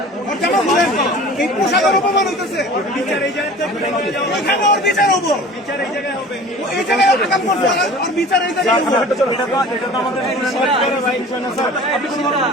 এই পোশাকের অপমান হইতেছে, বিচার এই জায়গায় ওর বিচার হবো, বিচার এই জায়গায় হবে, এই জায়গায় আগাম করছে আর বিচার এই জায়গায় হবে। এটা তো আমাদের আপনি কোনো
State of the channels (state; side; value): normal; both; correlation 0.42